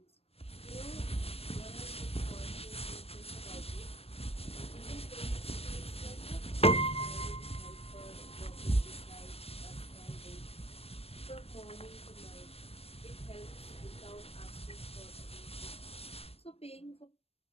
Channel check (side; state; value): right; late; 0.29 ms